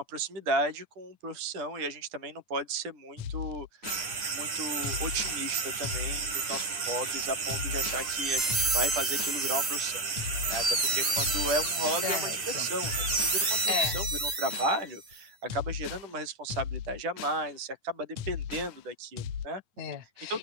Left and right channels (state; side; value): late; left; 9.8 ms